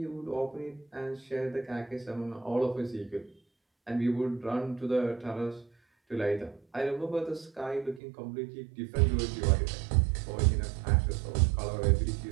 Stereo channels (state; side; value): drops out; left; at 8.0 s